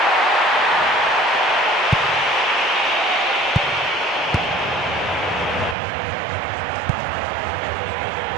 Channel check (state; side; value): drops out; left; at 5.8 s